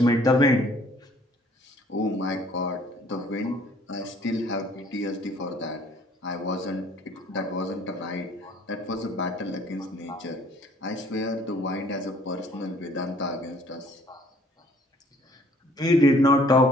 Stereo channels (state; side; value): normal; both; correlation 0.57